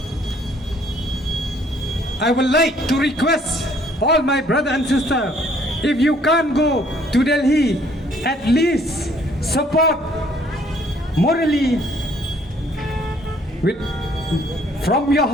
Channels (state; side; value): normal; both; correlation 0.62